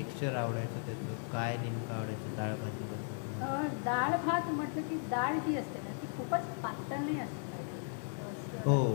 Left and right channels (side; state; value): right; silent; 54 dB below the other